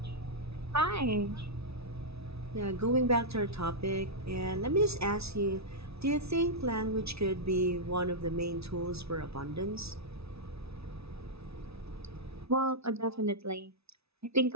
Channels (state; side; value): late; left; 0.79 ms